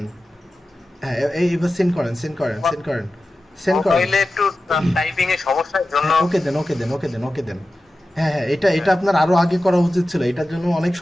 হ্যাঁ, এবার সেন্ড করেন, সেন্ড করেন, সেন্ড করেন, সেন্ড করেন। মোবাইলে একটু টাইপিং এর সমস্যার জন্য। হ্যাঁ, ওকে দেন, ওকে দেন, ওকে দেন, ওকে দেন। হ্যাঁ হ্যাঁ, এটা এটা আপনার আরো আগে করা উচিত ছিল, এটার জন্য অনেক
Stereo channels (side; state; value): both; normal; correlation 0.93